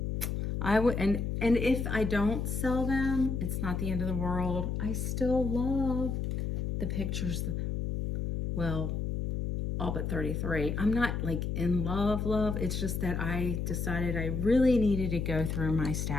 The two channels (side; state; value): left; noise; hum, 2 dB below the sound